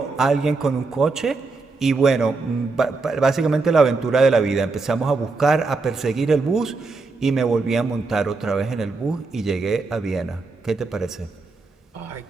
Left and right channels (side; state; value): left; quieter; 3.9 dB